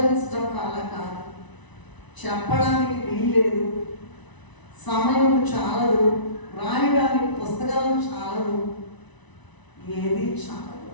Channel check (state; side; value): late; right; 1.0 ms